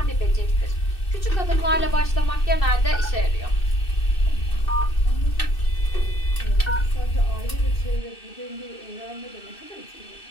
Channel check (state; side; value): late; right; 2.6 ms